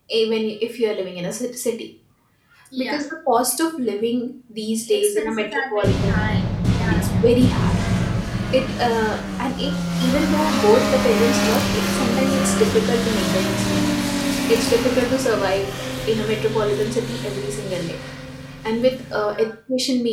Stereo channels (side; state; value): both; identical; correlation 1.00